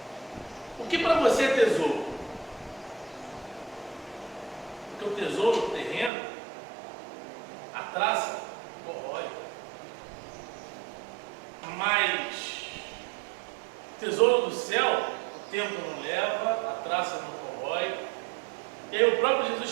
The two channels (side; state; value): left; drops out; at 6.1 s